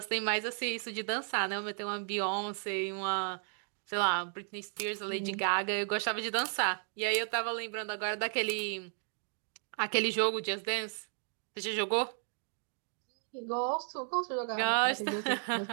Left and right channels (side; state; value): left; silent; 55 dB below the other